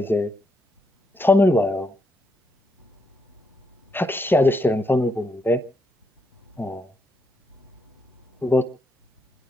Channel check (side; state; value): both; normal; correlation 0.79